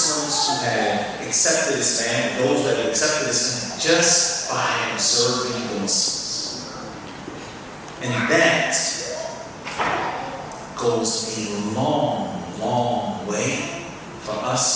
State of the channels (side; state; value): both; identical; correlation 1.00